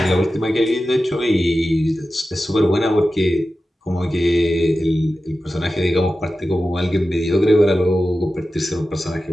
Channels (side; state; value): both; normal; correlation 0.93